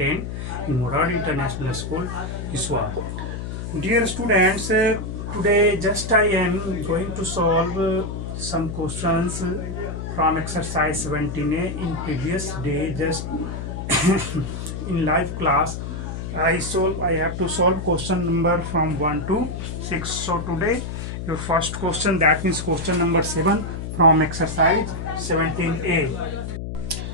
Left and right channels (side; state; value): left; noise; hum, 6 dB below the sound